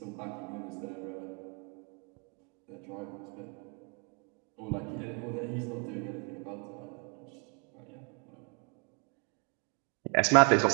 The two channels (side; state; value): left; quieter; 37.1 dB